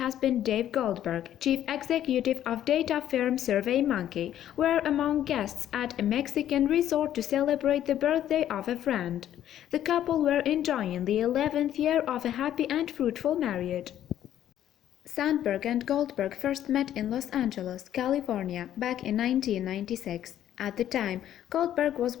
Dave Goldberg, Chief Executive of data firm SurveyMonkey, were among guests at a Mexican resort to celebrate the birthday of a friend. The couple were enjoying the 11th year of a happy and fruitful marriage. Sandberg and Goldberg first met in Los Angeles, California, back in 1996. At the time, Goldberg was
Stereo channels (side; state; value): right; quieter; 11.4 dB